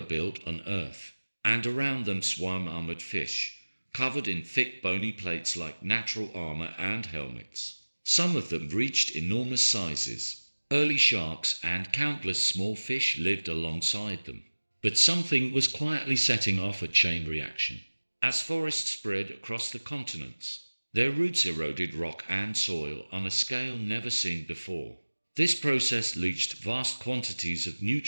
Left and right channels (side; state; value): both; inverted; correlation -1.00